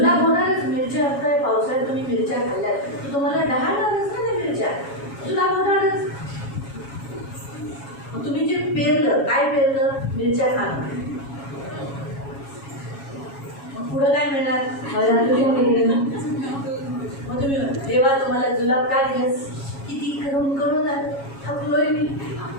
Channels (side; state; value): right; late; 7.3 ms